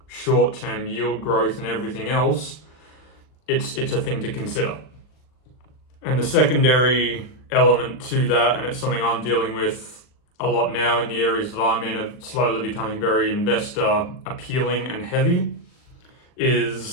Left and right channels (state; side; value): late; right; 39 ms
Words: short-term yield growth and everything else, it's a thing to consider. And the secondary element to that, and it's something I'm dealing with a lot now in the areas that I'm in, are slowly becoming very investor appealing and heavy,